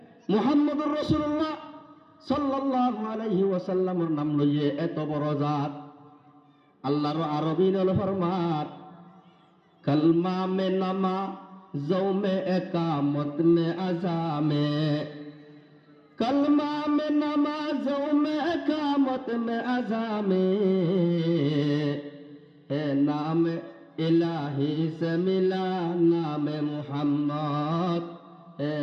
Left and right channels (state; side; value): identical; both; correlation 1.00